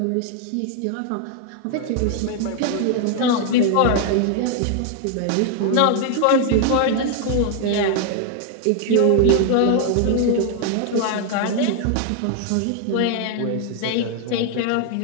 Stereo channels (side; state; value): both; different; correlation 0.00